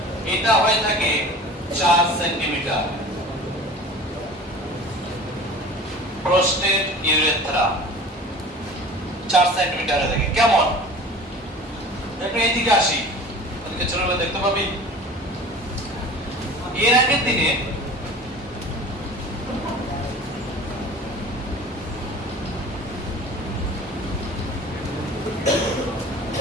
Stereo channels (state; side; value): normal; both; correlation 0.41